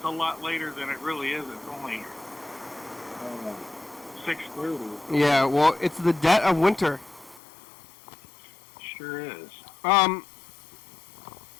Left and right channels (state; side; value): drops out; right; at 7.4 s